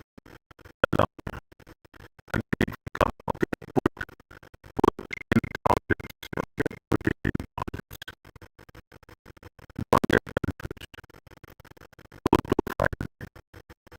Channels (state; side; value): identical; both; correlation 1.00